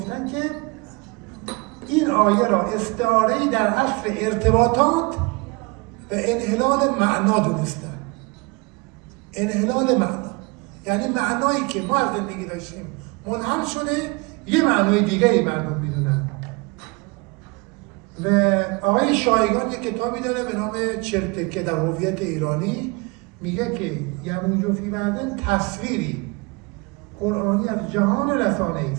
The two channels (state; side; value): quieter; left; 28.3 dB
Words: که این آیه را استعاره‌ای در عصر ارتباطات و انحلال معنا دونستن. انحلال معنا یعنی معنایی که ما از زندگی داشتیم منحل شده، یه معنای دیگری مردم میدونن. و آقای شایگان یک کتابی داره به نام چرتکه در هویت ایرانی، میگه که یموج فی بعض تصویری قرآنی از جهان رسانه